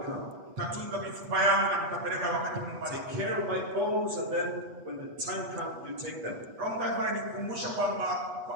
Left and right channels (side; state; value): left; late; 8.2 ms